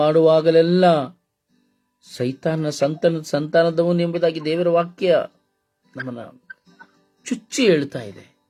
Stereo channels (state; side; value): identical; both; correlation 1.00